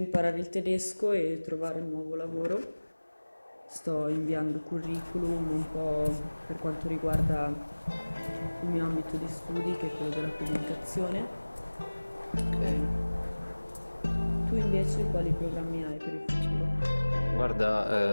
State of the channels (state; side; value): inverted; both; correlation -1.00